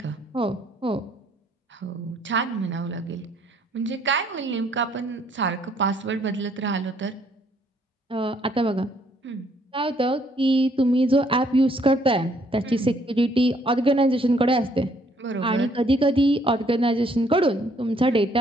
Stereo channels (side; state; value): both; normal; correlation 0.66